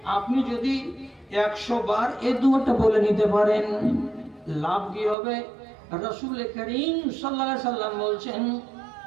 আপনি যদি 100 বার এই দোয়াটা বলে নিতে পারেন, লাভ কি হবে? রাসূল করিম সাল্লাল্লাহু আলাইহি সাল্লাম বলছেন,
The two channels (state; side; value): drops out; left; at 5.2 s